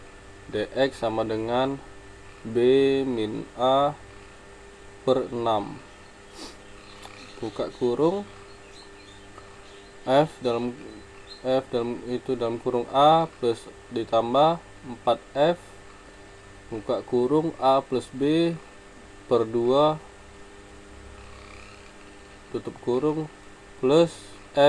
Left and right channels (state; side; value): identical; both; correlation 1.00